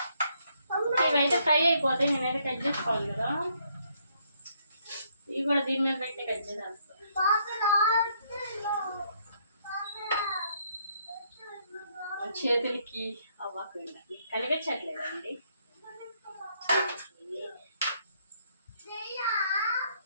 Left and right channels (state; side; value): inverted; both; correlation -0.71